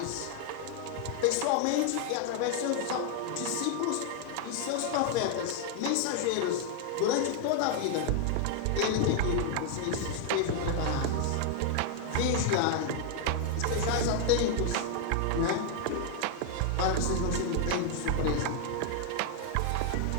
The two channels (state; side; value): different; both; correlation 0.00